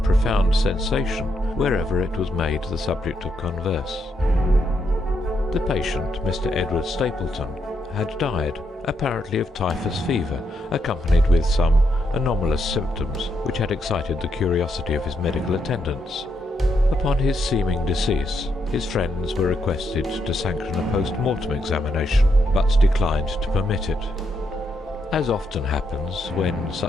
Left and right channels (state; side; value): normal; both; correlation 0.79